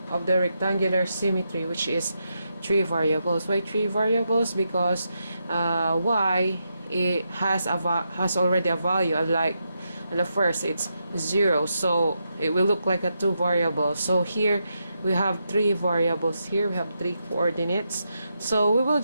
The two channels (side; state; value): both; inverted; correlation -0.84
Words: of the rectangular symmetry, which is 3 variables. Why 3 variables? Because y it has already a value, like in the first it's 0, so it will look like a 2 variables. So here we have 3 variables, here we have 3 coordinates. So we will